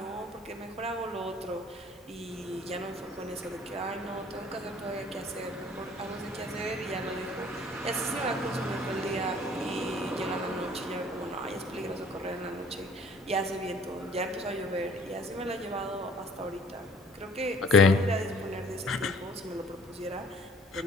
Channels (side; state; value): both; normal; correlation 0.54